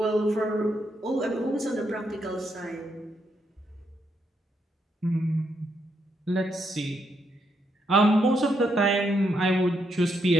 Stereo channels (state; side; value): normal; both; correlation 0.78